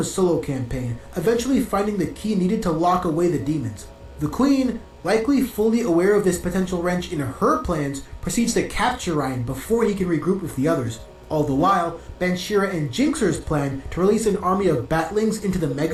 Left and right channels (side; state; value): both; identical; correlation 1.00